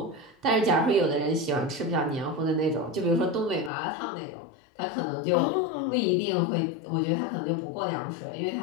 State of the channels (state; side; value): drops out; right; at 3.7 s